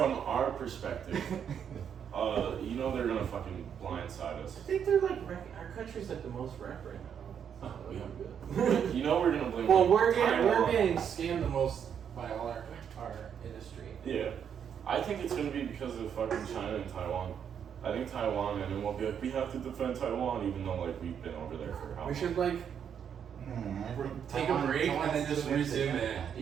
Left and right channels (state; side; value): quieter; left; 8.1 dB